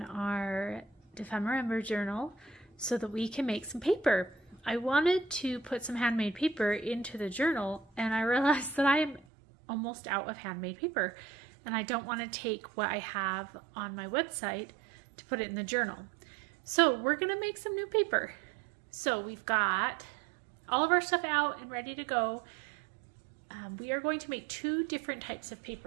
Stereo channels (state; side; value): drops out; left; at 9.2 s